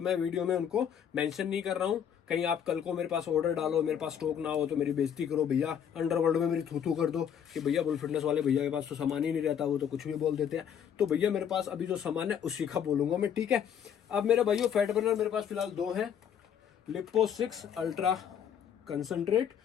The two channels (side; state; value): right; quieter; 8.5 dB